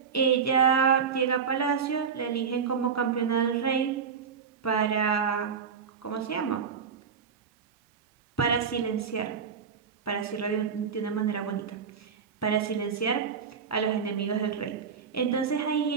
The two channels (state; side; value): quieter; left; 6.5 dB